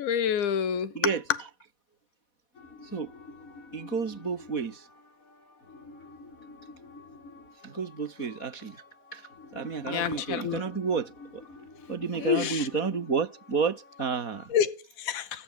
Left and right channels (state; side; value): late; right; 4.1 ms